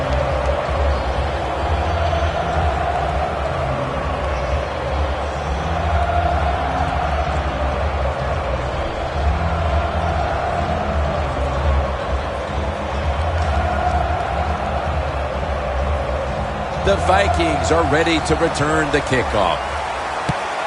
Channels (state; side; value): identical; both; correlation 1.00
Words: The Vikings are ready to return the kickoff.